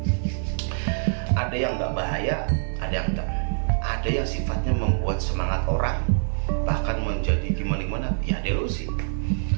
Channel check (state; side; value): silent; left; 62 dB below the other